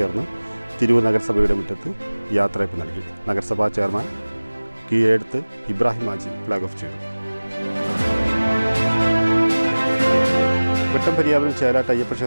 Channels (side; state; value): both; inverted; correlation -1.00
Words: തിരൂർ നഗരസഭയുടെ മുറ്റത്ത് യാത്രയപ്പ് നൽകി. നഗരസഭാ ചെയർമാൻ കീഴെടുത്ത് ഇബ്രാഹിം ഹാജി ഫ്ലാഗ് ഓഫ് ചെയ്തു. വെട്ടംപര്യാവനം ചേലാട്ട് അയ്യപ്പ